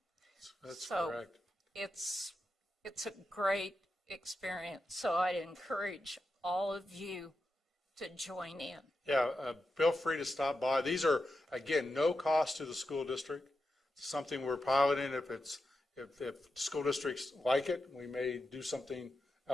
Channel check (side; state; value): both; normal; correlation 0.88